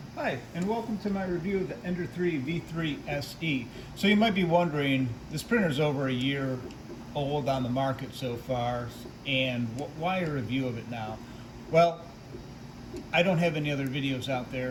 Hi, and welcome to my review of the Ender-3 V3 SE. So you might be wondering, this printer's over a year old on the market so far, and why a review of it now? Well, I don't have any other videos out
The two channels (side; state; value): both; identical; correlation 1.00